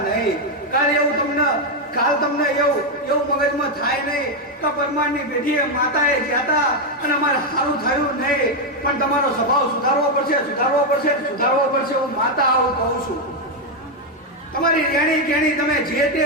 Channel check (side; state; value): both; normal; correlation 0.03